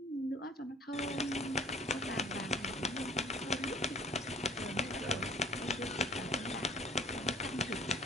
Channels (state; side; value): normal; both; correlation 0.52